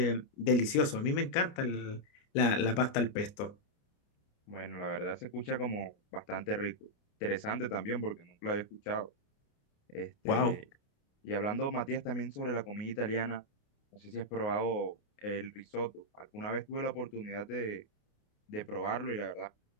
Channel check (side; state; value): right; late; 29 ms